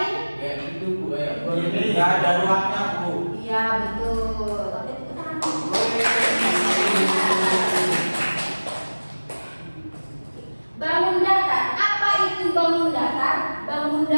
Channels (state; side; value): inverted; both; correlation -1.00